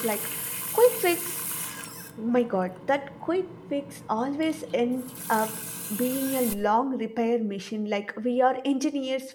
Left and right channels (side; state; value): both; identical; correlation 1.00